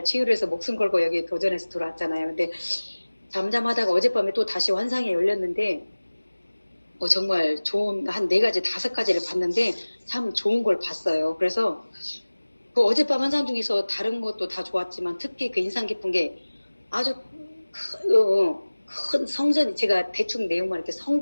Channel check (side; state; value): both; inverted; correlation -1.00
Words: 치유를 해서 목숨 걸고 여기 도전해서 들어왔잖아요. 근데 잠잠하다가 어젯밤에 또 다시 환상이 열렸는데 정말 좋은 한 4가지 5가지를 봤는데 참 좋은 걸 봤어요. 그래서 그 어젯밤 환상 중에서 다른 것도 다 좋았지만 특히 그 인상 깊은 게 아주 큰 성전이 제가 대충 내용만 이렇게